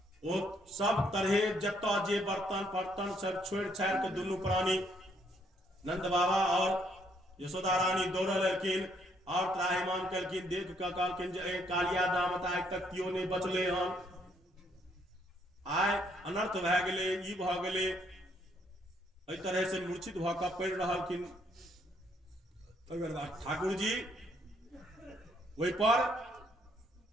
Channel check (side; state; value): both; normal; correlation 0.69